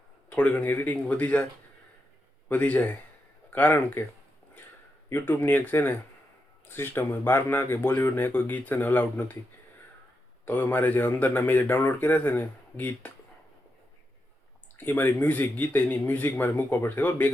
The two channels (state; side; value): normal; both; correlation 0.85